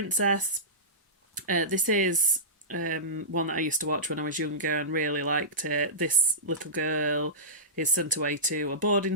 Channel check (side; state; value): both; normal; correlation -0.20